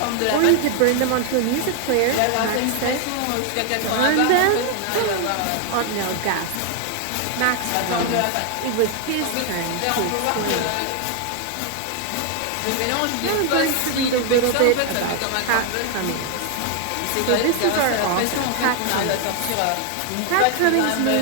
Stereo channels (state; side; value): different; both; correlation 0.00